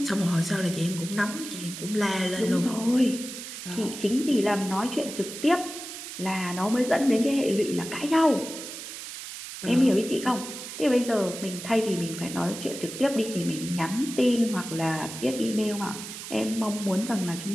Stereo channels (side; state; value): right; noise; hiss, 10 dB below the sound